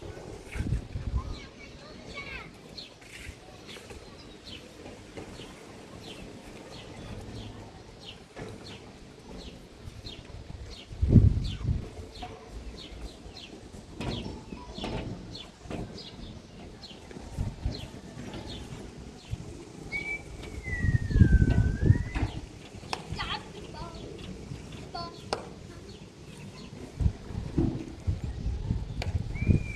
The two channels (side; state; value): both; identical; correlation 1.00